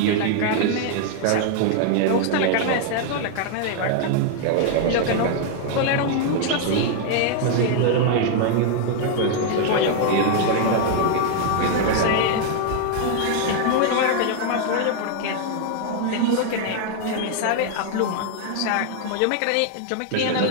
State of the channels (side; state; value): both; different; correlation 0.00